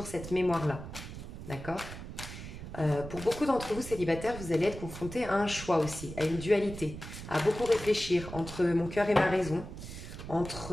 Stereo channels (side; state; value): right; noise; rumble, 11 dB below the sound